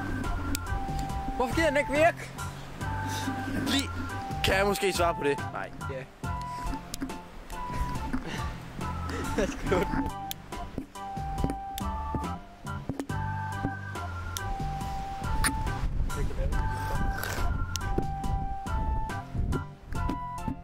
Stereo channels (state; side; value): identical; both; correlation 1.00